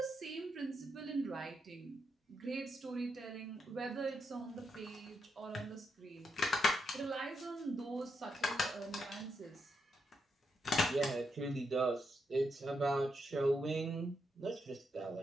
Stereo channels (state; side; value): normal; both; correlation 0.82